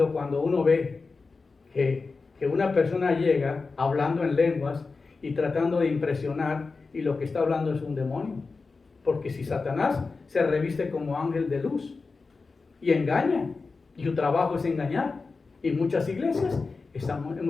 cuando uno ve que una persona llega hablando en lenguas y tratando de impresionar y lo que está hablando es un demonio. Porque si Satanás se reviste como ángel de luz y engaña, y su trabajo es engañar, y muchas iglesias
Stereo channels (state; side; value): quieter; right; 4.2 dB